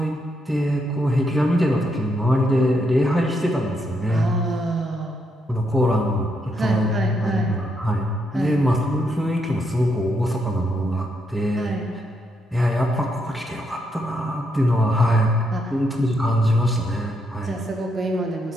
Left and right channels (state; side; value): normal; both; correlation 0.78